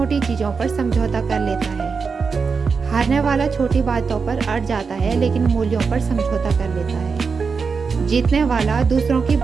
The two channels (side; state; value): left; quieter; 5.2 dB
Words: चीज़ों पर समझौता कर लेता है। हारने वाला छोटी बातों पर अड़ जाता है, लेकिन मूल्यों पर समझौता कर लेता है। जीतने वाला दूसरों की